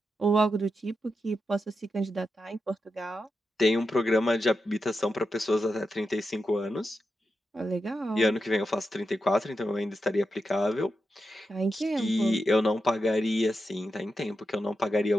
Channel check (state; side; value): normal; both; correlation 0.88